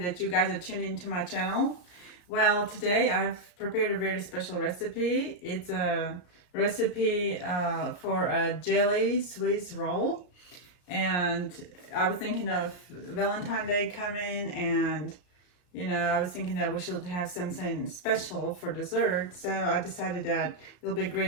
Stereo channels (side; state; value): right; late; 34 ms